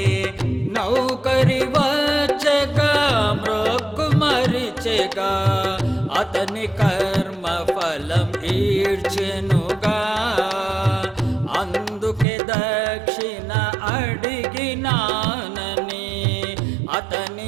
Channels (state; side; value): drops out; left; at 12.2 s